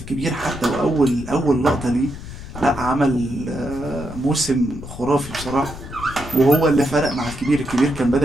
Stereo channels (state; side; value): noise; left; rumble, 12 dB below the sound